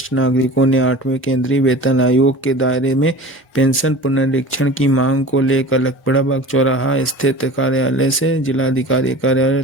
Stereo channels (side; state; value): both; normal; correlation 0.38